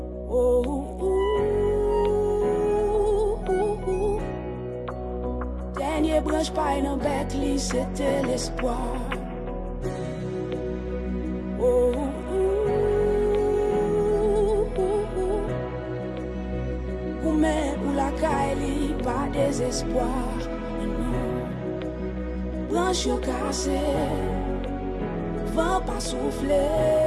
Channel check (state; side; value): identical; both; correlation 1.00